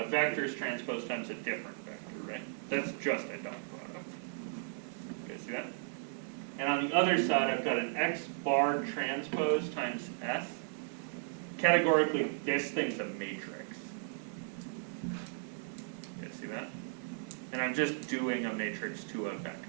vector's transpose times a different vector, right? That's just a dot product. You guys see that? And on the other side, I've got an x bar transpose times s. Categorically, this thing's a matrix. You guys see that? And I'm just doing a matrix to a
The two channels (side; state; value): left; silent; digital silence